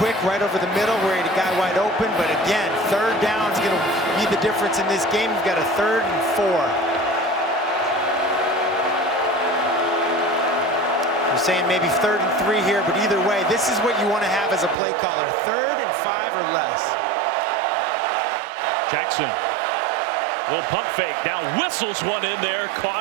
right over the middle where he had a guy wide open. But again, third down is going to be the difference in this game. You've got a 3rd and 4. We're saying maybe 3rd and 3 here, but either way, this is what you want to have as a play caller. 3rd and 5 or less. Jackson Little pump fake. Now whistles one in there.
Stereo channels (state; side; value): drops out; left; at 14.8 s